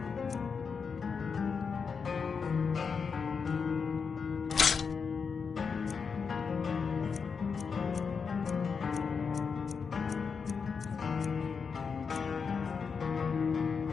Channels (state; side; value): quieter; right; 5.7 dB